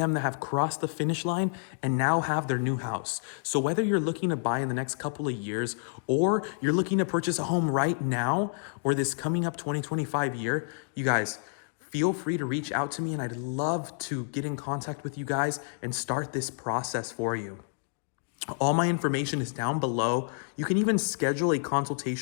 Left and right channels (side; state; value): right; silent; digital silence